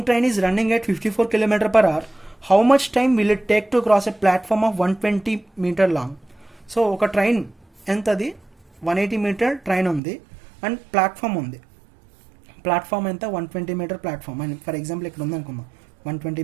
train is running at 54 km/h. How much time will it take to cross a platform of 120 meter long? So ఒక ట్రైన్ ఎంతది, 180 meter ట్రైన్ ఉంది అండ్ ప్లాట్ఫామ్ ఉంది. ప్లాట్ఫామ్ ఎంత, 120 meter ప్లాట్ఫామ్ అని ఫర్ ఎగ్జాంపుల్ ఇక్కడ ఉంది అనుకుందాం, 120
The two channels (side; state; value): left; drops out; at 10.0 s